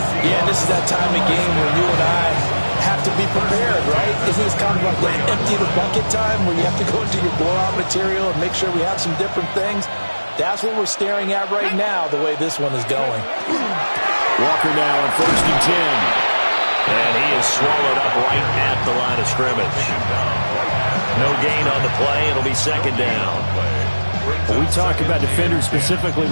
Yeah, and this is that time of game where you and I have to be prepared, right? Isn't this kind of like the empty the bucket time where you have to go into your blowout material and make sure we have some different things? That's what we're staring at right now, the way this one is going. Walker now on 1st and 10. And he is swallowed up right at the line of scrimmage. No gain on the play. It'll be 2nd down. When we talk about defenders, specifically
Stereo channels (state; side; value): inverted; both; correlation -1.00